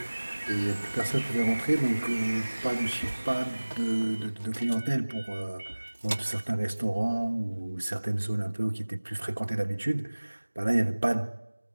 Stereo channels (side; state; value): both; inverted; correlation -1.00